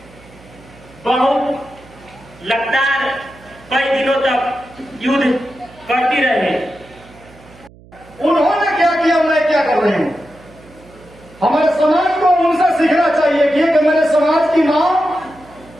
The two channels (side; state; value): right; noise; hum, 24 dB below the sound